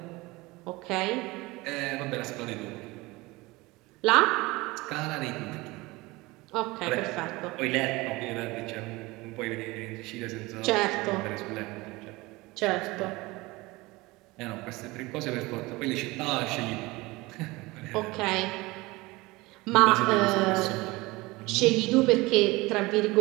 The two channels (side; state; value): left; quieter; 22.0 dB